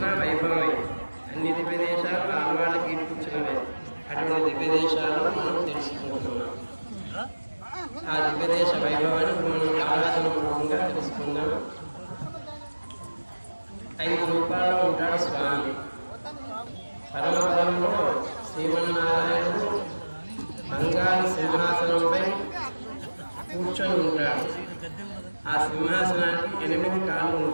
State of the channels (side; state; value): both; inverted; correlation -1.00